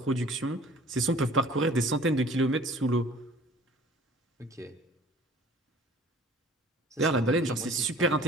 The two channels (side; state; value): both; normal; correlation 0.49